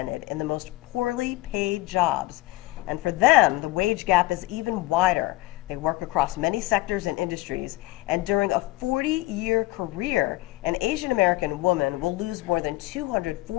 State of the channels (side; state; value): right; quieter; 19.3 dB